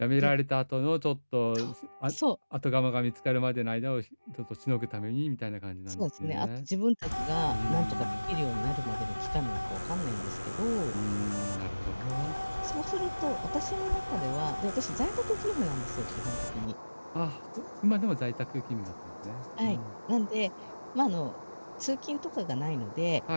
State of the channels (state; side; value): inverted; both; correlation -1.00